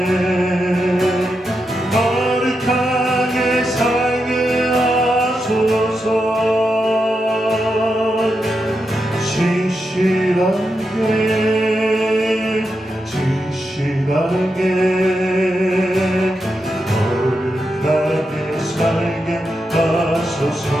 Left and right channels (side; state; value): both; normal; correlation 0.86